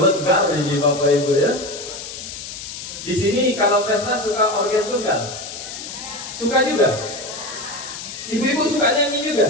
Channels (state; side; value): noise; left; hiss, 10 dB below the sound